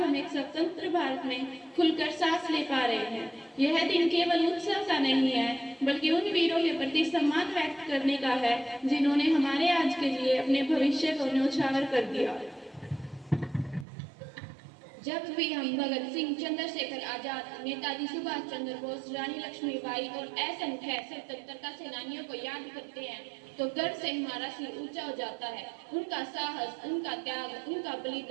एक स्वतंत्र भारत में खुलकर सांस ले पा रहे हैं। यह दिन केवल उत्सव का नहीं है, बल्कि उन वीरों के प्रति सम्मान व्यक्त करने का है जिन्होंने हमारे आज के लिए अपने भविष्य को न्यौछावर कर दिया। जब भी हम भगत सिंह, चंद्रशेखर आजाद, नेताजी सुभाष चंद्र बोस, रानी लक्ष्मीबाई और असंख्य स्वतंत्रता सेनानियों को याद करते हैं तो गर्व से हमारा सिर ऊंचा हो जाता है। उनका साहस, उनका त्याग, उनका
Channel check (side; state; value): left; drops out; at 13.9 s